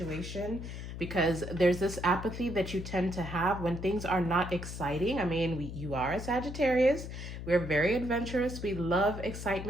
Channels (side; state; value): left; noise; hum, 8 dB below the sound